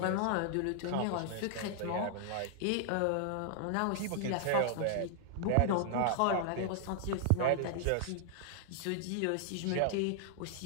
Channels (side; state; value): both; different; correlation -0.01